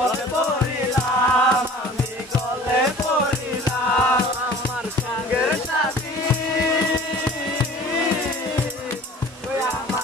পড়িলাম আমি গলে পড়িলাম আমার সঙ্গের সাথী ওই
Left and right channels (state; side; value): normal; both; correlation 0.45